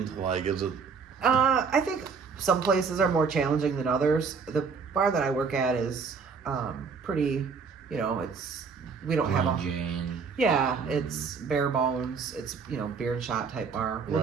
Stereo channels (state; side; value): quieter; left; 5.4 dB